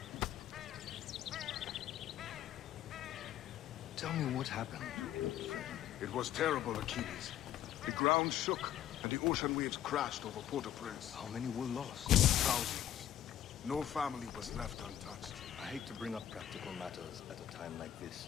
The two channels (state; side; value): quieter; right; 11.3 dB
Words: Tell me what happened. It was terrible, Achilles. The ground shook, and the ocean waves crashed over Port-au-Prince. How many were lost? Thousands. No family was left untouched. I hate to bring up practical matters at a time like this.